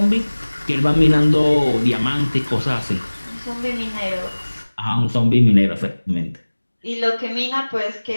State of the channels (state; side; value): inverted; both; correlation -1.00